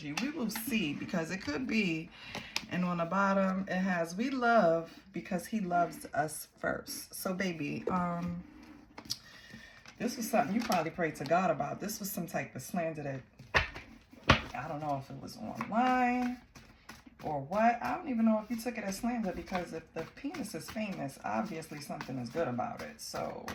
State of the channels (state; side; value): identical; both; correlation 1.00